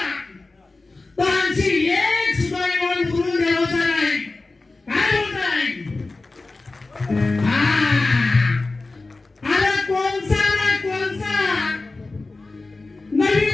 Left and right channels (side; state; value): right; quieter; 3.4 dB